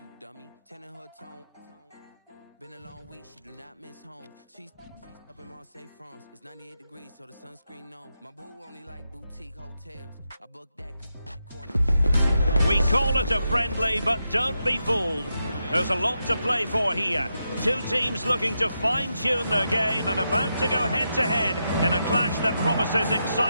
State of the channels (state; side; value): inverted; both; correlation -0.85